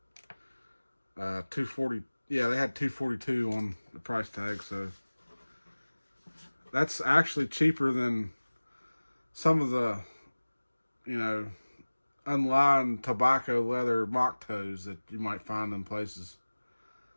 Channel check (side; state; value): both; inverted; correlation -1.00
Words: Yeah, they had 242 on the price tag. So that's actually cheaper than some of the, you know, unlined tobacco leather mock toes that you might find in places.